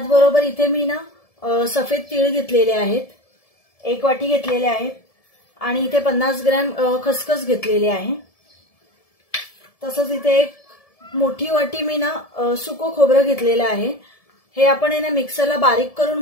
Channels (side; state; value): right; late; 1.7 ms